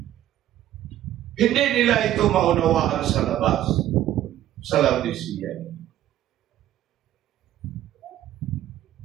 Hindi nila ito maunawaan sa labas, sa Laodicea.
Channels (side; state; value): left; quieter; 12.7 dB